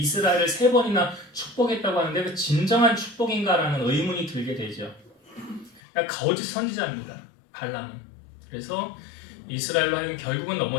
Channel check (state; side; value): drops out; right; at 5.8 s